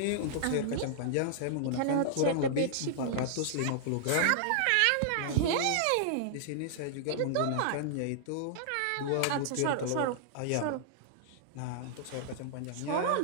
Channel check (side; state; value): both; different; correlation -0.01